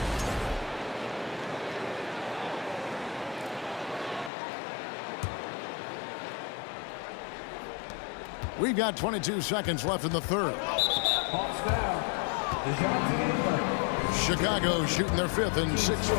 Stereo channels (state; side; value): drops out; right; at 4.3 s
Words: We've got 22 seconds left in the third. Chicago shooting their 5th and 6th